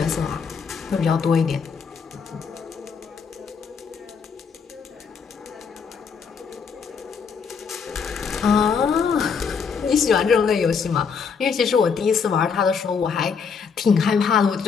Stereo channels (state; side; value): quieter; right; 6.0 dB